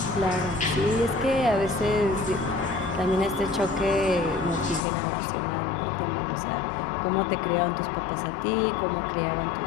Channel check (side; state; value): right; drops out; at 4.8 s